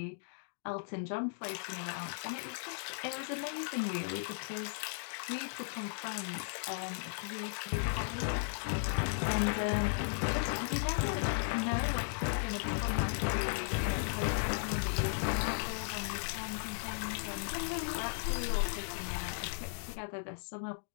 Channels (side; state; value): right; silent; digital silence